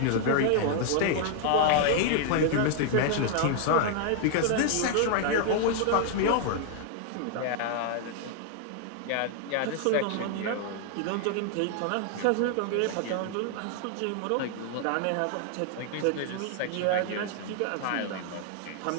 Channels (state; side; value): different; both; correlation 0.00